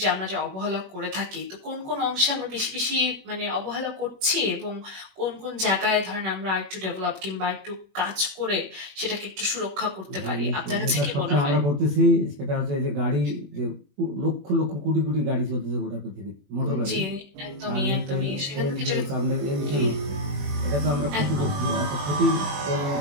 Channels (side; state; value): left; late; 21 ms